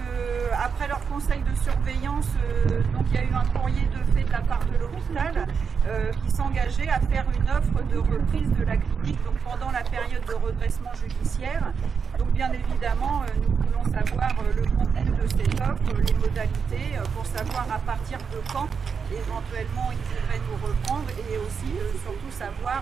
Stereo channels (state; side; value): quieter; left; 6.1 dB